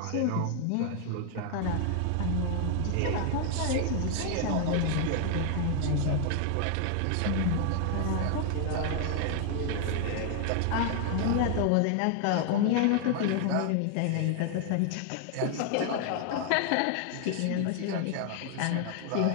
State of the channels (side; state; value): both; different; correlation 0.00